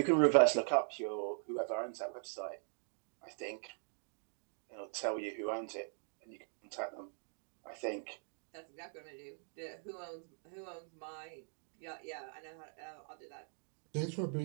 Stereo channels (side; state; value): left; silent; 50 dB below the other